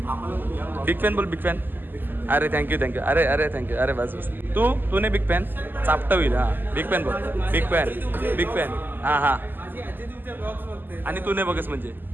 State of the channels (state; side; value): late; left; 0.091 ms